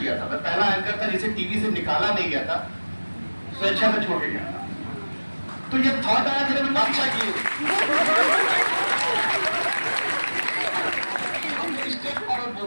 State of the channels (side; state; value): both; inverted; correlation -1.00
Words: था, मैं पहला एंकर था जिसे टीवी से निकाला नहीं गया था, स्वेच्छा से छोड़ के गया था। तो ये थॉट आया कि मैं काम चाहिए, हम स्टेप फॉरवर्ड